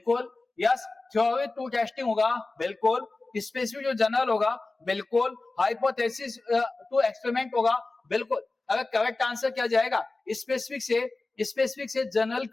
यस, थ्योरी टू टेस्टिंग होगा, बिल्कुल, स्पेसिफिक जो जनरल होगा, बिल्कुल, हाइपोथेसिस टू एक्सपेरिमेंट होगा, बिल्कुल। अगर करेक्ट आंसर क्या जाएगा? स्पेसिफिक से जनरल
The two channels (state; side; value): quieter; right; 3.4 dB